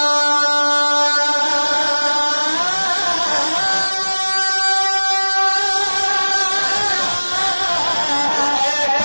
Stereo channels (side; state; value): both; inverted; correlation -1.00